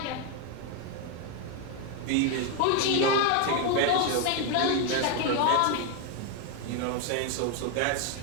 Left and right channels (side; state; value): both; different; correlation 0.01